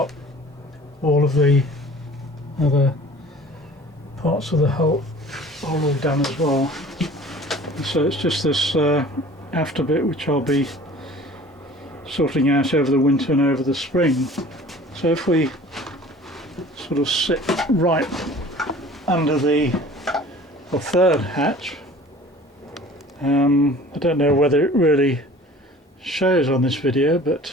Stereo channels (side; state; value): both; normal; correlation 0.46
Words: All of the other parts of the hull are all done as well. And so it's just this after bit which I'll be sorting out over the winter and over the spring. So if we sort of sit right under the third hatch, I don't know whether it really shows on this video,